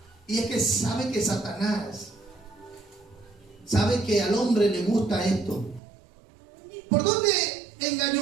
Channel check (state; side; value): drops out; left; at 5.8 s